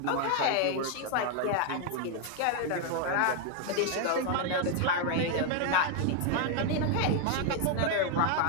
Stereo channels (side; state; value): both; different; correlation 0.00